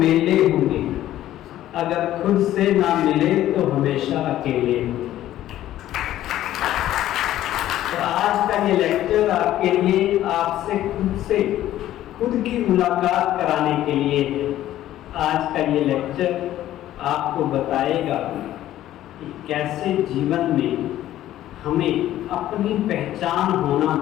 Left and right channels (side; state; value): right; quieter; 13.3 dB